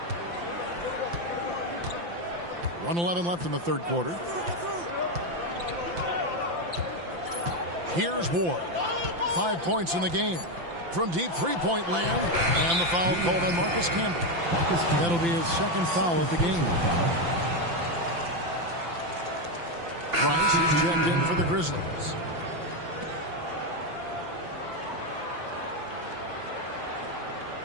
1:11 left in the third quarter. Here's Ward. 5 points in the game. From deep three-point land. And the foul called on Marcus Camby. That'll be his second foul of the game. Price is checked in for the Grizzlies.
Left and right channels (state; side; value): late; left; 5.8 ms